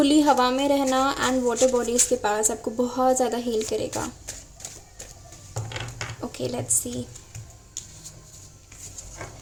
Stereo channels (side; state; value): both; identical; correlation 1.00